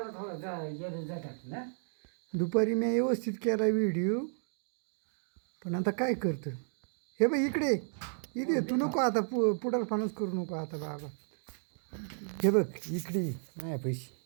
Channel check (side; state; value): left; silent; digital silence